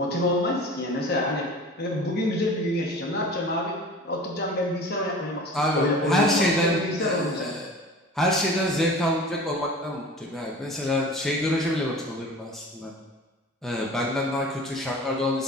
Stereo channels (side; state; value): both; normal; correlation 0.40